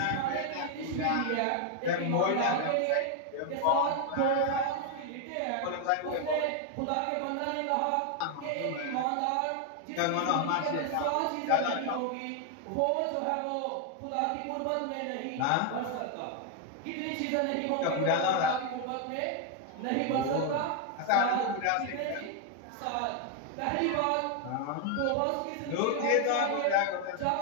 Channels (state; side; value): different; both; correlation 0.00